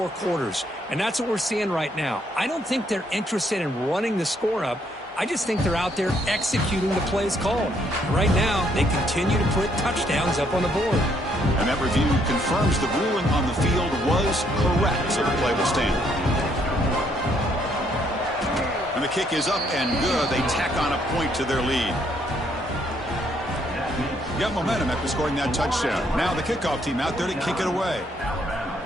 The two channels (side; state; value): both; normal; correlation 0.70